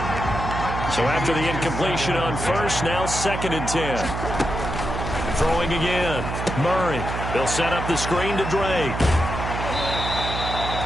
So after the incompletion on 1st, now 2nd and 10. Throwing again. Murray. They'll set up the screen to Drake.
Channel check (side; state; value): right; noise; hum, 5 dB below the sound